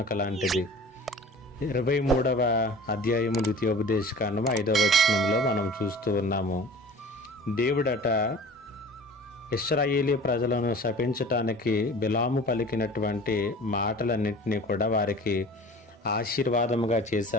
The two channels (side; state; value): both; normal; correlation 0.42